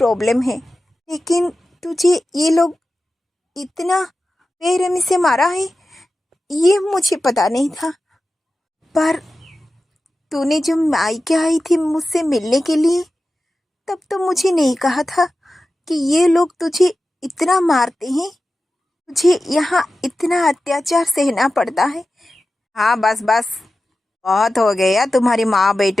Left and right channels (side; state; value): both; normal; correlation 0.93